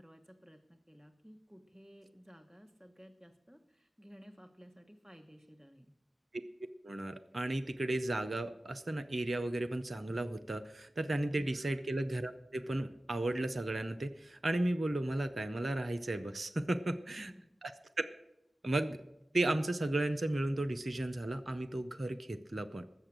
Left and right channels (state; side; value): normal; both; correlation 0.95